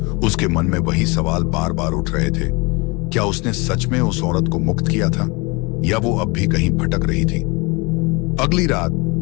उसके मन में वही सवाल बार बार उठ रहे थे। क्या उसने सच में उस औरत को मुक्त किया था, या वो अब भी कहीं भटक रही थी? अगली रात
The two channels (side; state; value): right; quieter; 27.4 dB